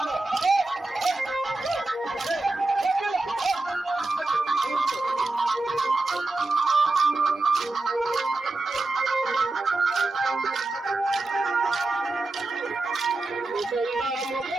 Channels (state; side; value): quieter; left; 3.1 dB